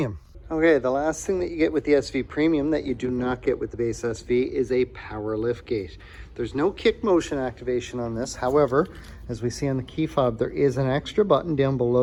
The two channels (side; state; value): both; identical; correlation 1.00